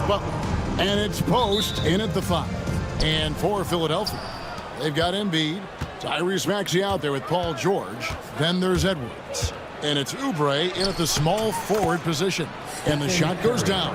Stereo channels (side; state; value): both; identical; correlation 1.00